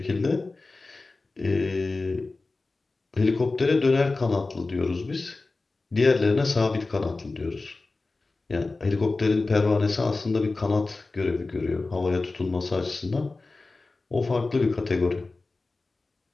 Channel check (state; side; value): quieter; right; 3.5 dB